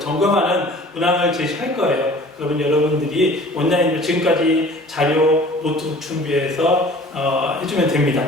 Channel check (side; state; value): both; normal; correlation 0.47